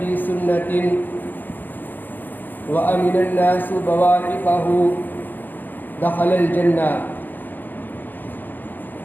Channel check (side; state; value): right; late; 0.088 ms